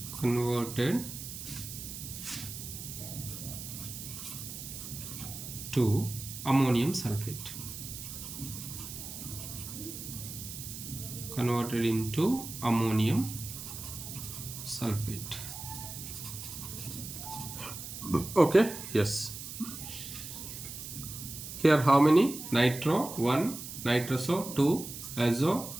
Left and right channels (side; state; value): right; noise; hiss, 9 dB below the sound